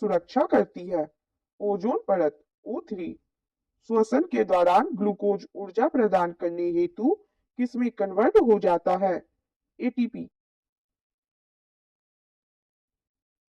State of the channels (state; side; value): identical; both; correlation 1.00